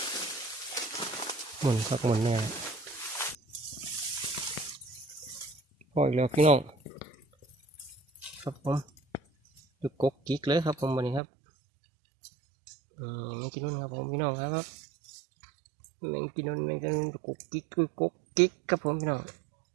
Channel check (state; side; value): drops out; left; at 11.2 s